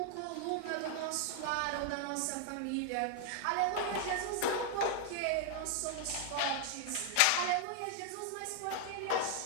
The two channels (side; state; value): both; different; correlation 0.00